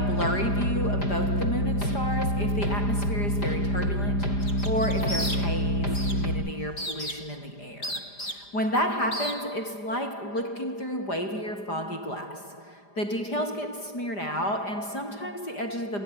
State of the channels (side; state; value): right; late; 4.9 ms